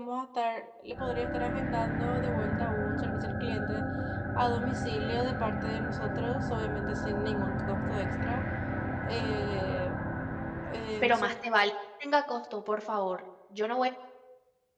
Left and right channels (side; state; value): both; identical; correlation 1.00